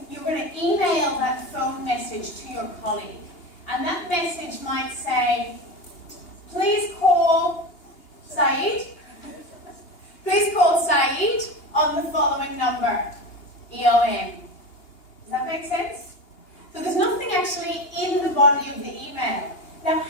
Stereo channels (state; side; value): late; right; 2.8 ms